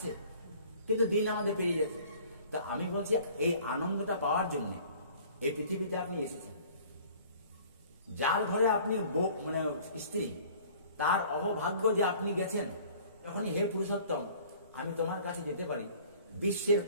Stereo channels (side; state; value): both; inverted; correlation -0.50